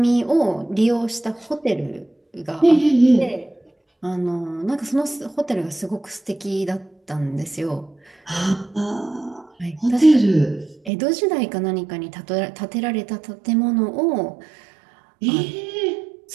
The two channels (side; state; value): left; drops out; at 10.9 s